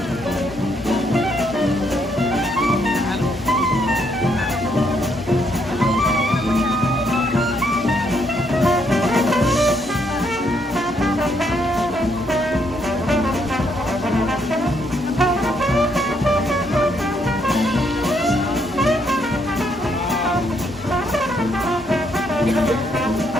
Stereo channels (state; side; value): normal; both; correlation 0.73